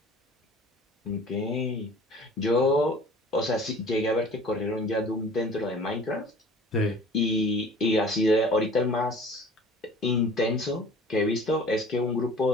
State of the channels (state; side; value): normal; both; correlation 0.46